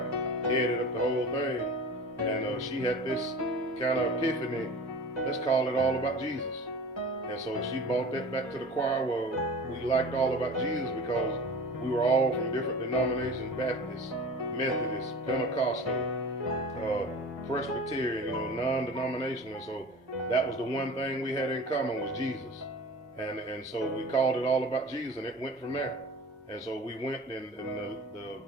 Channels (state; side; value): normal; both; correlation 0.38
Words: headed up the whole thing, and she had this kind of epiphany. Let's call it All About Jesus. And so she brought that back to the choir. Well, we liked All About Jesus because we were all from different denominations: Baptist, Methodist, Pentecostal, Presbyterian, non-denominational. So that was the one thing we had in common was Jesus. And so we called it All About Jesus, and it went from there. And so we went, and